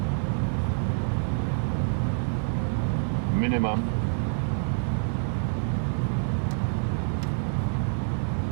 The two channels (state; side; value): silent; left; digital silence